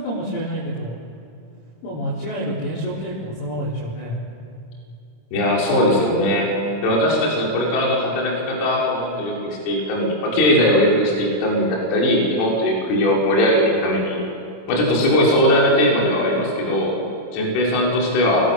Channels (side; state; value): right; late; 26 ms